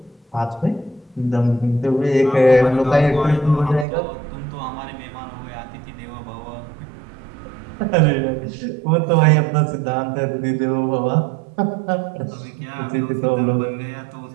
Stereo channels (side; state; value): left; drops out; at 3.9 s